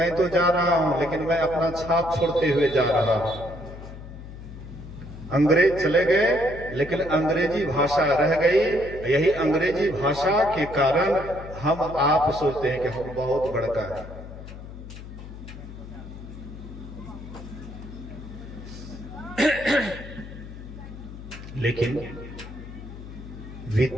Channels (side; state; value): left; noise; hum, 13 dB below the sound